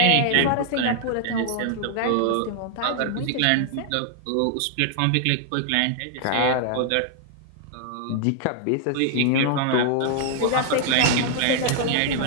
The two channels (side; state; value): both; different; correlation 0.00